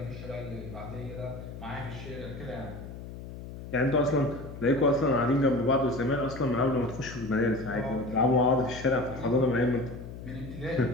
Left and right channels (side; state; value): left; noise; hum, 12 dB below the sound